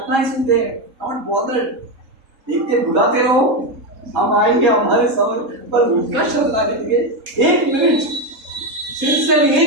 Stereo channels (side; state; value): left; late; 3.7 ms